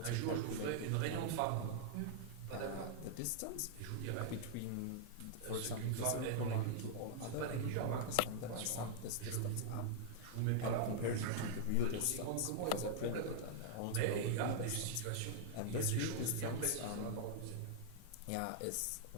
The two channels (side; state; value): both; different; correlation -0.01